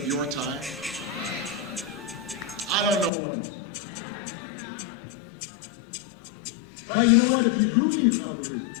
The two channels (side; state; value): right; drops out; at 3.1 s